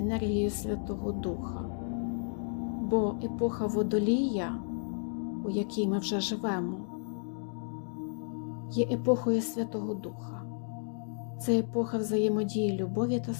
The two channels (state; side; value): silent; right; digital silence